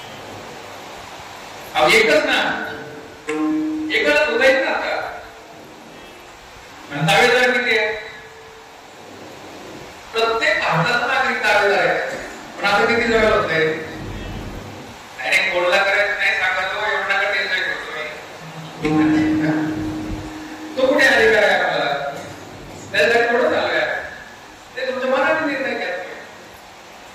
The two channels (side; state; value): both; identical; correlation 1.00